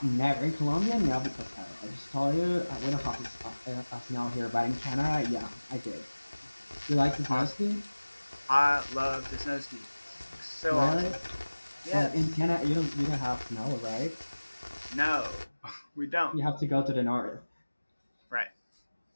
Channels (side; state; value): both; inverted; correlation -1.00